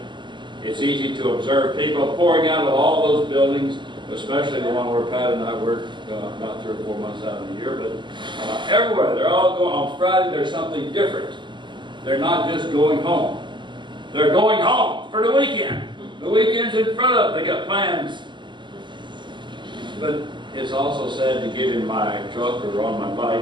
it's easy to observe people pouring out of all those buildings, especially the one where Pat and I work about 3 or 4 months out of the year. But everywhere, they're all going. On Friday, there's something different. They're not just going home. They're going home for the weekend. The weekend's in front of them. They got plans. But it's also sad to get in my truck or on my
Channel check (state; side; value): late; left; 0.22 ms